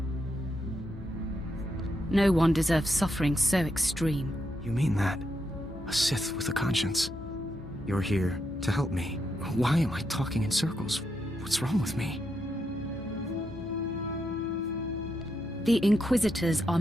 No one deserves suffering so extreme. You mean that? A Sith with a conscience. You're here to help me. Why am I talking in circles? What's wrong with me? The Inquisitors are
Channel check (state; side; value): normal; both; correlation 0.82